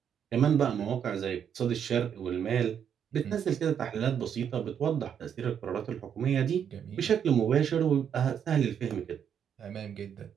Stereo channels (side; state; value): left; quieter; 8.3 dB